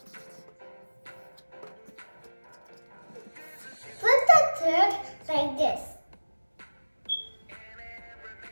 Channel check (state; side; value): inverted; both; correlation -1.00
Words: Put the thread like this.